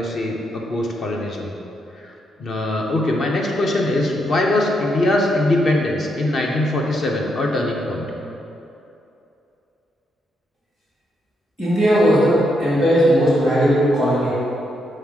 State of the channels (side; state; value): both; normal; correlation 0.79